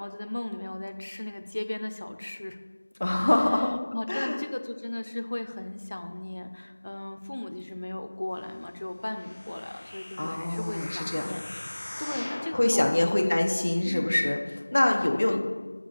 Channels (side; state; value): both; inverted; correlation -1.00